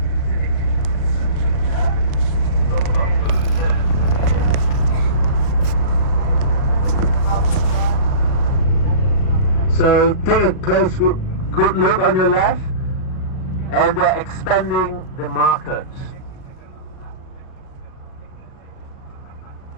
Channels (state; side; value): late; right; 38 ms